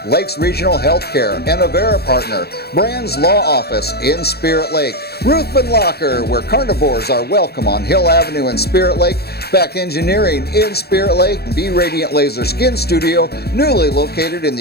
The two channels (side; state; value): right; late; 0.46 ms